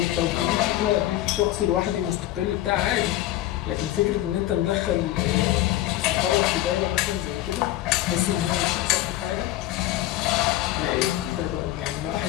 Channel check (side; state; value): right; quieter; 14.8 dB